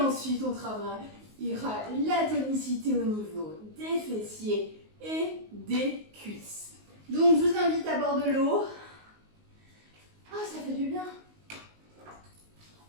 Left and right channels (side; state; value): left; late; 19 ms